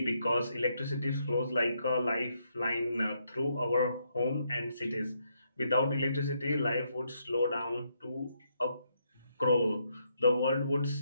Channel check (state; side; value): inverted; both; correlation -0.77